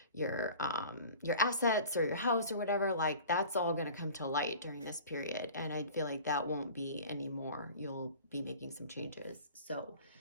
assets or your house or whatever, like that's all going to come to light during this period. And I feel like that won't be anymore. You'll be making some changes. So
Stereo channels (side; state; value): both; inverted; correlation -0.43